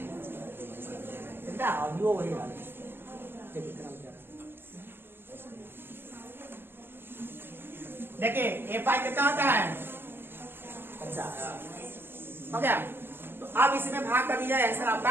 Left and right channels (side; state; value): left; late; 0.10 ms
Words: कितना ऑडियो वही आ देखिए एफआई कितना होता है? 50। हो गया। तो अब इसमें भाग कर दीजिए, आंसर